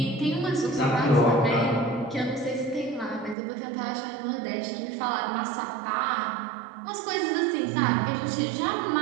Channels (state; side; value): drops out; left; at 3.4 s